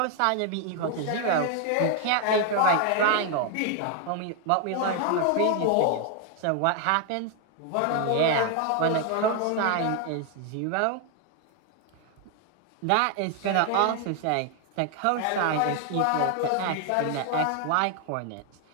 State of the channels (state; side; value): different; both; correlation 0.00